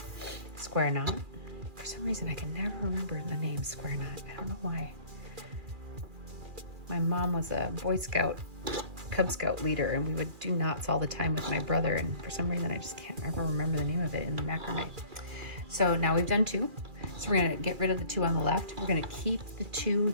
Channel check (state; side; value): late; left; 2.4 ms